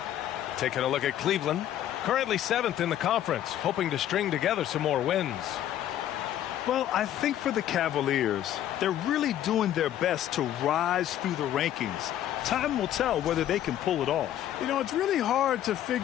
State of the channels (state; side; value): quieter; right; 11.7 dB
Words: Taking a look at Cleveland, currently 7th in the conference, hoping to string together some more wins. Well, I think for the Cavaliers, they're really doing their best to rise through the rankings. Time will tell whether they can pull it off. You know, it's really hard to